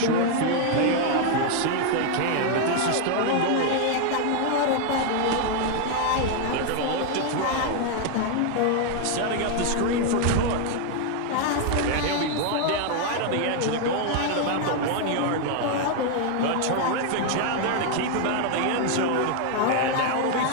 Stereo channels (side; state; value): both; different; correlation 0.00